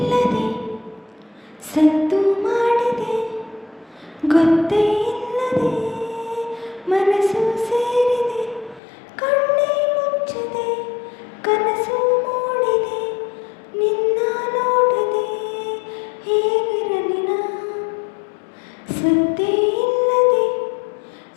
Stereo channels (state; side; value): drops out; right; at 8.8 s